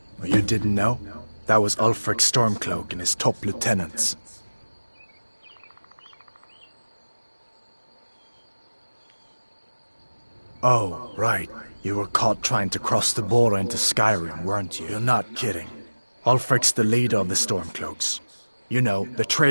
Well, you didn't know? That was Ulfric Stormcloak and his top lieutenants. Oh, right. You were caught trying to cross the border into Skyrim, weren't you? You're not kidding. Ulfric's the leader of the Stormcloaks. You know, the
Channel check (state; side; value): inverted; both; correlation -1.00